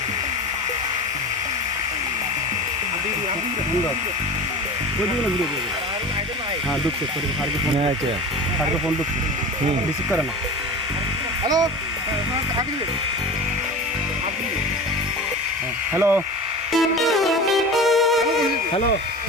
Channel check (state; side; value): normal; both; correlation 0.32